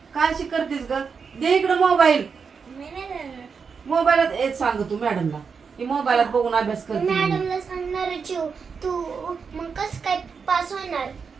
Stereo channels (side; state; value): left; quieter; 5.7 dB